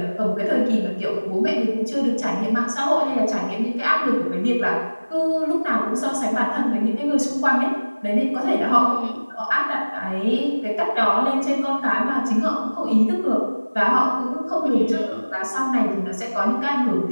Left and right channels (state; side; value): inverted; both; correlation -1.00